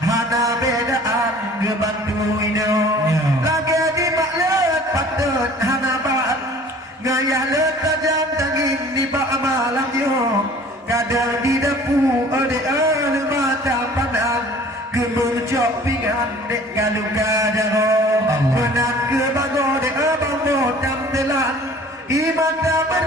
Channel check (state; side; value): normal; both; correlation 0.49